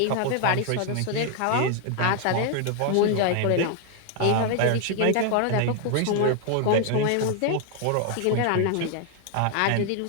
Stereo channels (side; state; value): both; different; correlation 0.00